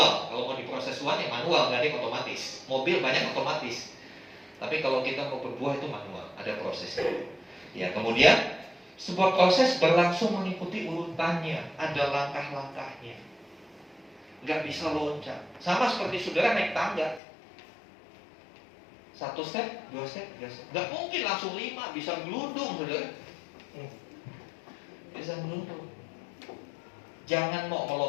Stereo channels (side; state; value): right; drops out; at 17.2 s